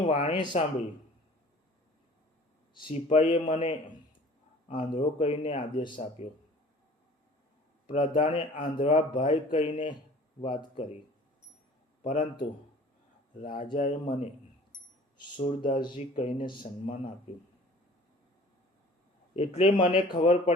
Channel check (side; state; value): both; normal; correlation 0.48